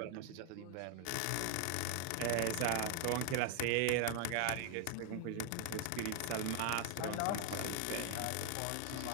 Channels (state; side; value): different; both; correlation 0.00